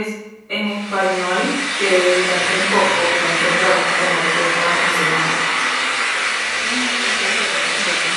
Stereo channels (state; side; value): identical; both; correlation 1.00